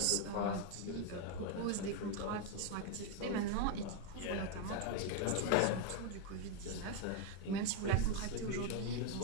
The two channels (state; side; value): different; both; correlation 0.01